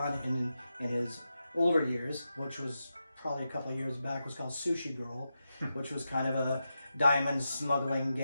in his older years, which was probably a couple of years back, was called Sushi Girl, which was kind of a diamond smuggling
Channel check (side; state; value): both; inverted; correlation -0.89